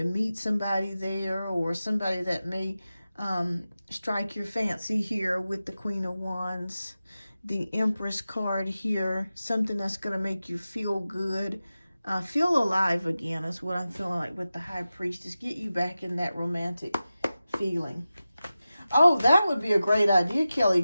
meet somebody there, or somebody that may strike your fancy here with the Queen of Wands. The Empress card here, something that's going to make you feel good. Feel alive again is what I'm feeling like with the High Priestess. Get you back in that romantic feeling. Oh, that would be a great idea,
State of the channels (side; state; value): both; inverted; correlation -0.94